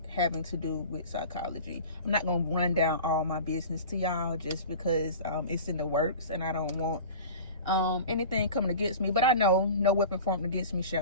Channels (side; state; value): both; inverted; correlation -0.37